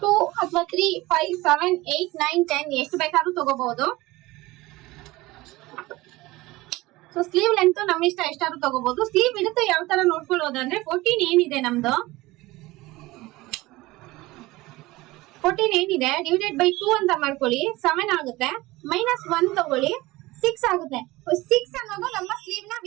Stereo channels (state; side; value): quieter; left; 19.8 dB